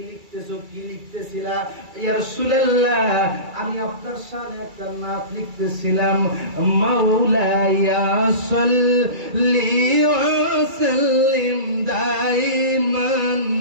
লিখতেছো, কি লিখতেছিলা? ইয়া রাসূলুল্লাহ, আমি আপনার শানে একটা নাত লিখতেছিলাম, মাওলায়া সাল্লি ওয়া সাল্লিম দাইমান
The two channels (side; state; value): left; late; 2.3 ms